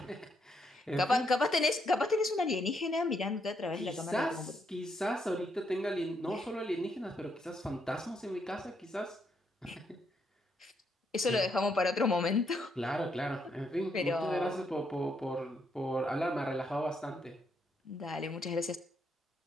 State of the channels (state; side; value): normal; both; correlation 0.76